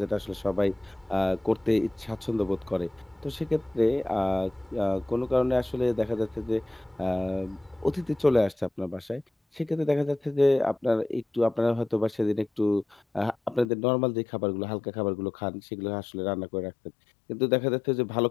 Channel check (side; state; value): right; drops out; at 13.7 s